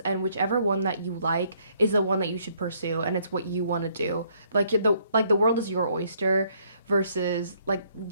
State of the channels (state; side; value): inverted; both; correlation -0.67